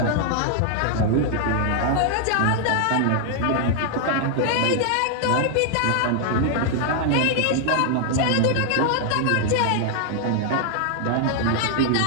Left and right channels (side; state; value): both; different; correlation 0.00